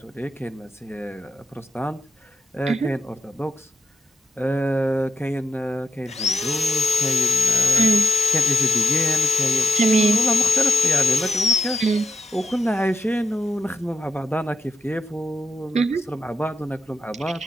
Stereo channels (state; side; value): normal; both; correlation 0.85